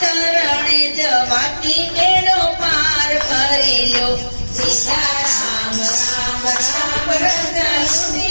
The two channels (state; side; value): inverted; both; correlation -1.00